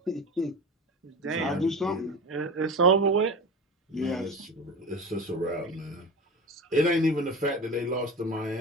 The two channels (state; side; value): normal; both; correlation 0.30